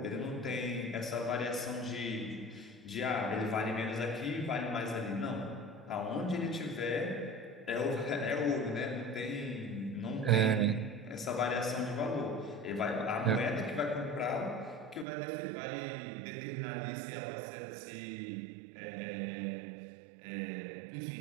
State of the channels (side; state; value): left; drops out; at 15.1 s